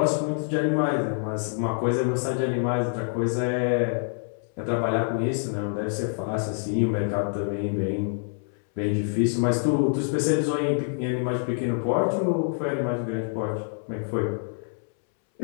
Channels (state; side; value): silent; right; 61 dB below the other